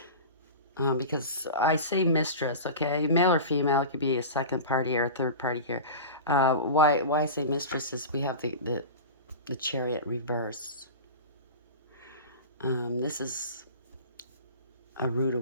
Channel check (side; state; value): both; inverted; correlation -0.30